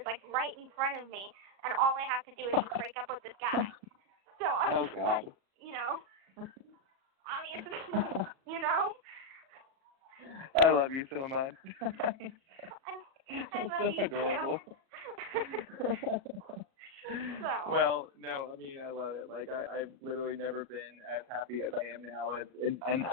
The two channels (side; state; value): left; late; 37 ms